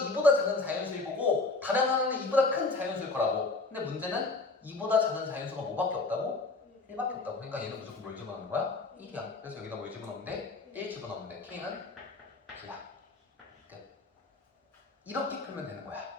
이보다 작은 자연수일 거고 다른 하나는 이보다 큰 자연수일 거라고. 근데 문제는 이보다 작은 자연수가 뭐밖에 없다고? 1밖에 없다고. 그러니까 얘는 무조건 뭘 집어넣는 거야? 1이야. 그래서 여기다 뭘 집어넣으면 돼? 1 집어넣으면 돼. k는 9야. 끝. 이렇게 풀면 되는 거야.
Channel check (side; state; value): right; quieter; 3.6 dB